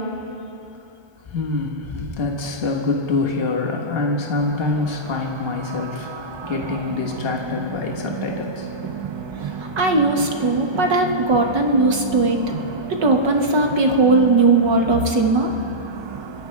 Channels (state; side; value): late; left; 1.3 ms